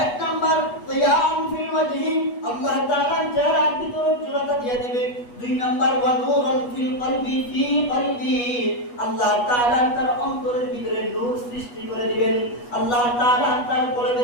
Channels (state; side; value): late; right; 8.2 ms